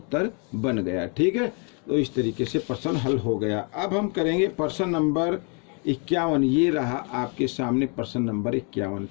बन गया। ठीक है, तो इस तरीके से प्रश्न हल हो गया। अब हम करेंगे प्रश्न नंबर 51। ये रहा आपके सामने प्रश्न नंबर 51।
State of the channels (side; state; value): right; quieter; 36.7 dB